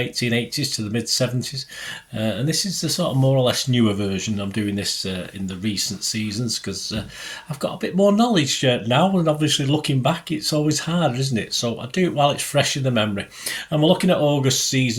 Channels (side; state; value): both; identical; correlation 1.00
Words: to the mid 70s, and this is the sort of more or less newer version. I'm doing this in the recent seasons because I've got a bit more knowledge now, and obviously looking back, it's always harder, isn't it? So I do it while it's fresh in the memory. And we're looking at August